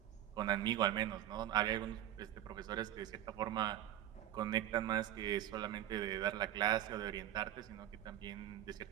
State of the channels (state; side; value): quieter; left; 12.1 dB